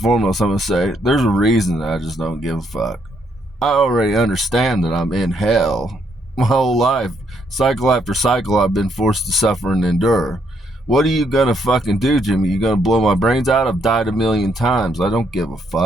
foremost, I'm going to say, there's a reason that I just don't give a fuck. I already understand that I'm in hell. My whole life, cycle after cycle, I've been forced to suffer and endure. What are you going to fucking do, Jimmy? You going to blow my brains out? I've died a million times. I don't give a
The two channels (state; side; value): normal; both; correlation 0.73